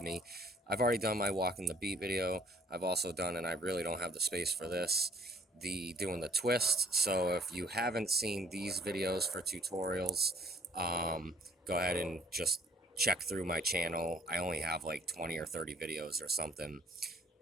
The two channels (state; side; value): normal; both; correlation 0.59